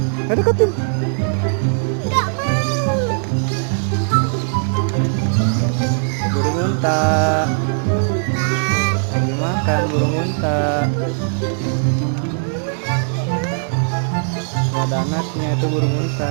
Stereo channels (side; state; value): left; silent; digital silence